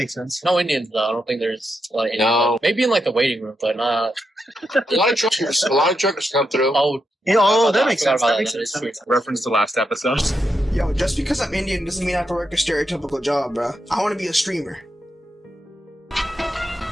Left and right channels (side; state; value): both; normal; correlation 0.84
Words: sense. No Indians though. I don't think there's a lot of Indians. No. Maybe in like the waiting room, but not. A lot of truckers come through. Oh, That makes sense. That makes sense. Reference to last episode. Yo, just because I'm Indian doesn't mean I have to work a stereotypical job, bro. I want to be a streamer.